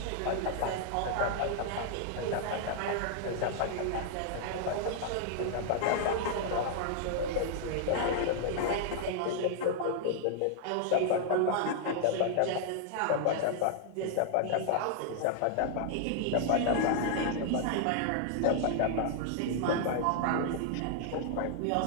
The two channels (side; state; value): both; different; correlation -0.01